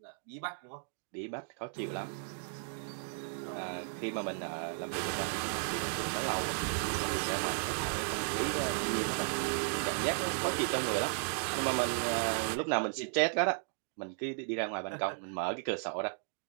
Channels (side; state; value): left; silent; digital silence